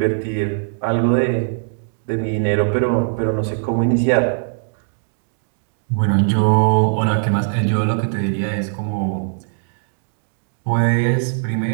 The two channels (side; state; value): left; silent; digital silence